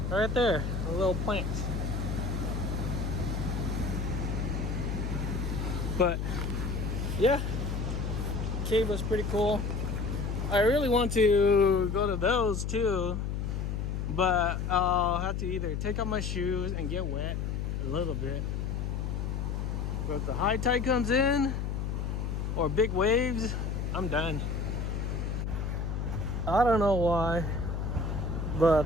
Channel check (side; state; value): left; noise; hum, 2 dB below the sound